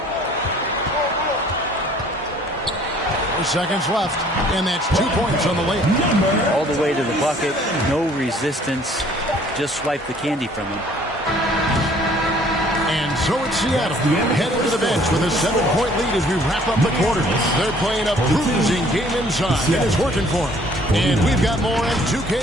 4 seconds left, and that's 2 points on the layup. All the way to the bucket, no resistance, just swipe the candy from him. And so it's Seattle heading to the bench with a 7-point lead as we wrap up the quarter. They're playing a bruising game inside, and it's working for them. And we've got more on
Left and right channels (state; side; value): normal; both; correlation 0.57